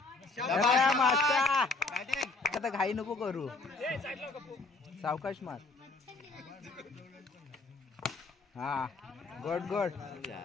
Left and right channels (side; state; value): right; quieter; 3.6 dB